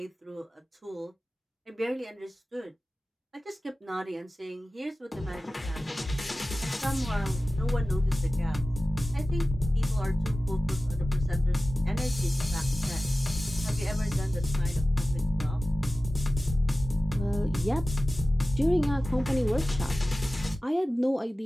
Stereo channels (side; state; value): both; normal; correlation 0.96